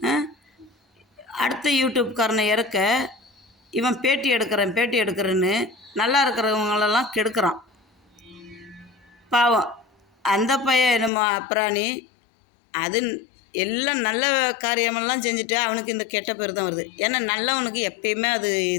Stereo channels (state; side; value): drops out; right; at 11.1 s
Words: அடுத்த யூடியூப்காரனை இறக்க இவன் பேட்டி எடுக்கிறேன்னு நல்லா இருக்கிறவங்களெல்லாம் கெடுக்கிறான். பாவம் அந்த பையன் என்னமோ அப்புறாணி, அது எல்லாம் நல்ல காரியமெல்லாம் செஞ்சுட்டு அவனுக்கு இந்த கெட்ட பேர் தான் வருது. ஏன்னா நல்லவனுக்கு எப்பயுமே அது